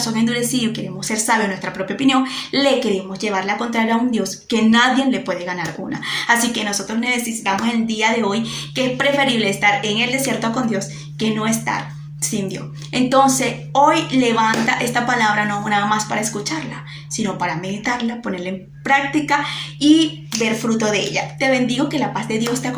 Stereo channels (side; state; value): both; identical; correlation 1.00